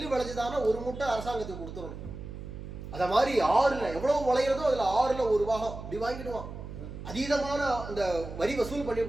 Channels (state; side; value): noise; right; hum, 10 dB below the sound